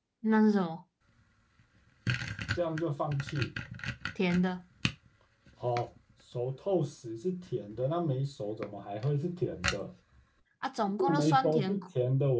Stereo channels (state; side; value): identical; both; correlation 1.00